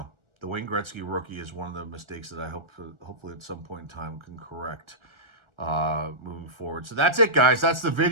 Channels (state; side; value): late; left; 1.4 ms